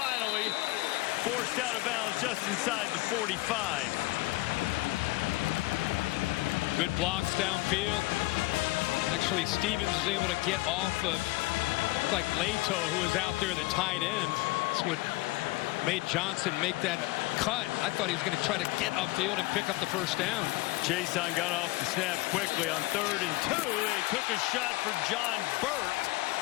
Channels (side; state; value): right; quieter; 20.8 dB